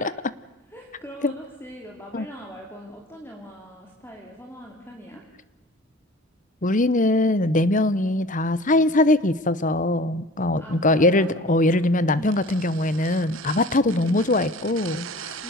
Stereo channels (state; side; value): normal; both; correlation 0.43